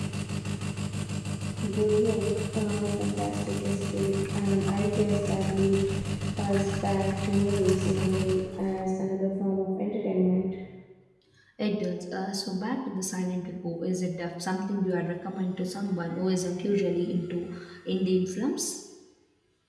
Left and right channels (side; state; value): both; identical; correlation 1.00